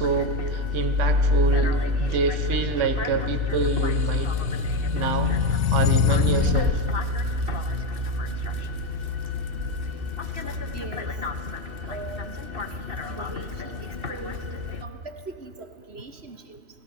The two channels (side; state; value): left; late; 2.6 ms